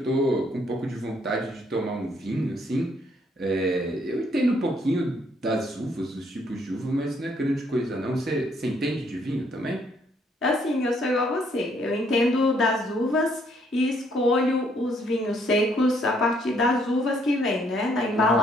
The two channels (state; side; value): normal; both; correlation 0.68